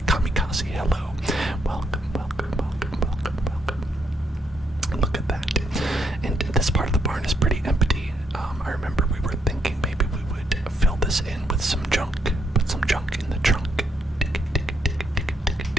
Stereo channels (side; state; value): both; normal; correlation 0.74